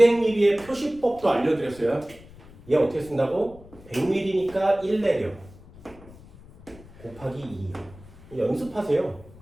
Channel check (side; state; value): left; noise; rumble, 21 dB below the sound